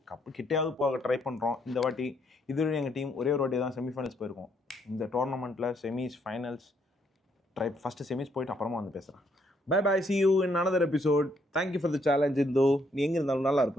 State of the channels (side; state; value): both; normal; correlation 0.72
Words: கிட்டையாவது போக ட்ரை பண்றோம் இந்த வாட்டி. இதுவரை எங்க டீம் ஒரே ஒரு வாட்டி தான் செமிஃபைனல்ஸ் போயிருக்கோம். இந்த டோர்னமெண்ட்ல செமிஸ் ஃபைனல்ஸ் ஃபர்ஸ்ட் செமிஸ் போயிட்டு அப்புறமா வந்து பேசுறேன். Bye bye, see you in another episode. Thank you for the challenge. இந்தோ நீ எங்க இருந்தாலும் நல்லா